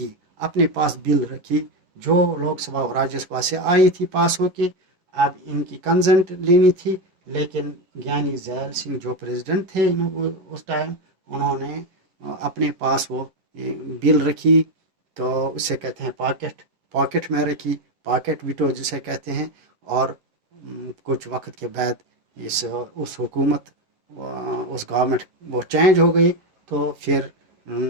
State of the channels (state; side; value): late; left; 11 ms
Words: اپنے پاس بل رکھی جو لوک سبھا اور راجیہ سبھا سے آئی تھی پاس ہو کے، اب ان کی کنسنٹ لینی تھی. لیکن گیانی زیل سنگھ جو پریزیڈنٹ تھے اس ٹائم، انہوں نے اپنے پاس وہ بل رکھی، تو اسے کہتے ہیں پاکٹ میں رکھی، پاکٹ ویٹو جسے کہتے ہیں. اور کچھ وقت کے بعد اس حکومت اس گورنمنٹ وہ چینج ہو گئی، تو پھر